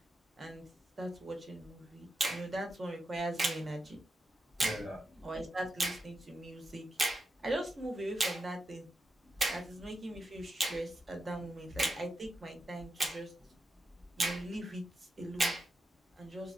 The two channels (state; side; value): normal; both; correlation 0.87